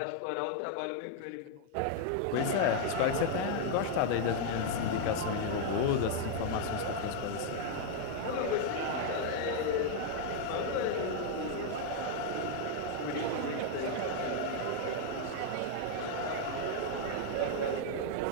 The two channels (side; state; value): both; different; correlation 0.00